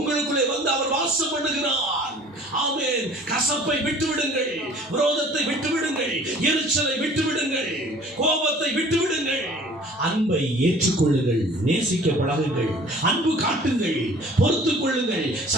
வந்து அவர் வாசம் பண்ணுகிறார். ஆமென். கசப்பை விட்டுவிடுங்கள், விரோதத்தை விட்டுவிடுங்கள், எரிச்சலை விட்டுவிடுங்கள், கோபத்தை விட்டுவிடுங்கள். அன்பை ஏற்றுக்கொள்ளுங்கள், நேசிக்க பழகுங்கள், அன்பு காட்டுங்கள், பொறுத்துக் கொள்ளுங்கள்,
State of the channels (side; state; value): both; normal; correlation 0.50